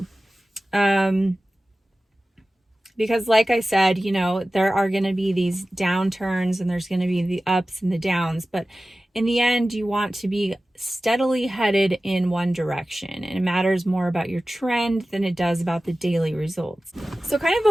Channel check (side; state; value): both; normal; correlation 0.96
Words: Because like I said, there are going to be these downturns and there's going to be the ups and the downs, but in the end, you want to be steadily headed in one direction, and it matters more about your trend than it does about the daily results. So kind of